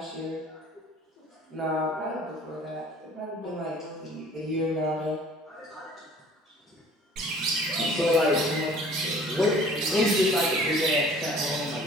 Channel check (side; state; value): both; normal; correlation 0.51